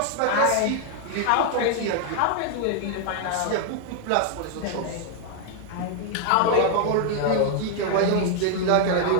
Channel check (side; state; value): both; different; correlation 0.00